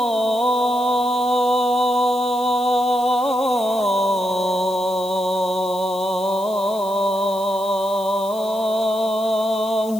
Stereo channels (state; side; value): noise; left; hiss, 18 dB below the sound